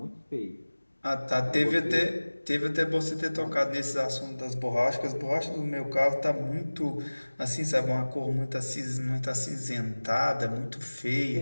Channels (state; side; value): inverted; both; correlation -1.00